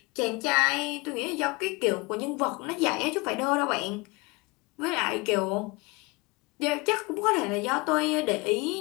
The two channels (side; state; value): right; quieter; 26.1 dB